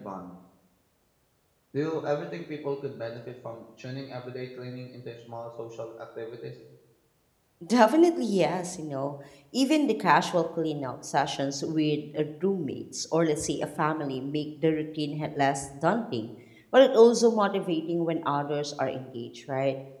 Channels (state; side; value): identical; both; correlation 1.00